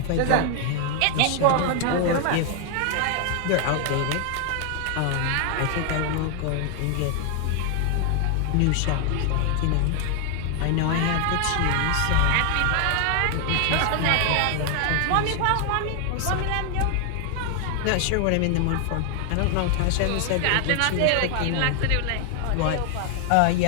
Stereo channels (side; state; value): both; different; correlation 0.00